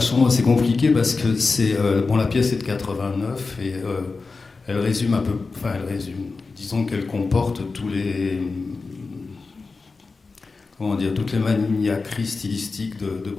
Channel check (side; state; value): right; quieter; 4.1 dB